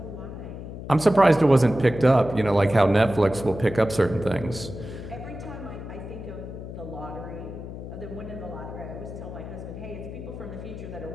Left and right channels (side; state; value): left; noise; hum, 10 dB below the sound